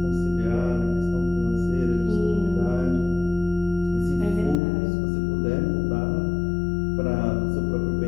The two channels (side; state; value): right; drops out; at 4.6 s